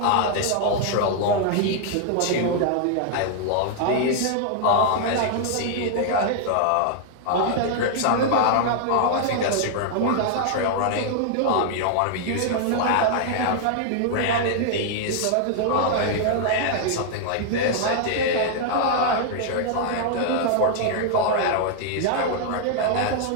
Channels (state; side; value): different; both; correlation 0.00